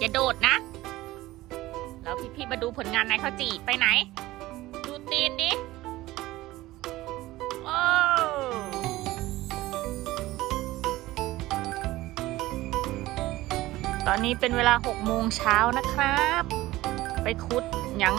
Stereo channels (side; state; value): left; quieter; 17.5 dB